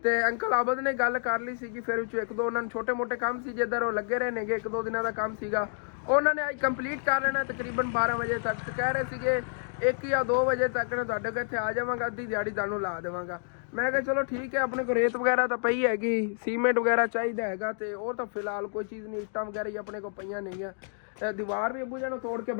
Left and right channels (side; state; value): right; silent; digital silence